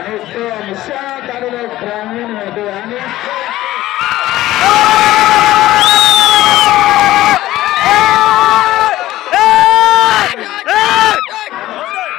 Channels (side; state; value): right; quieter; 15.5 dB